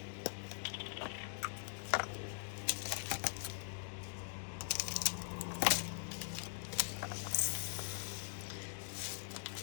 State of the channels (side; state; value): right; silent; digital silence